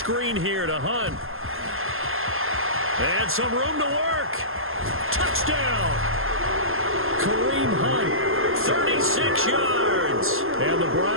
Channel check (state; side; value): late; left; 0.60 ms